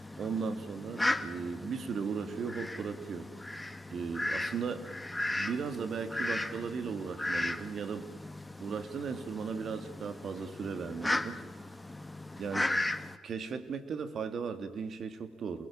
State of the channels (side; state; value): both; normal; correlation 0.86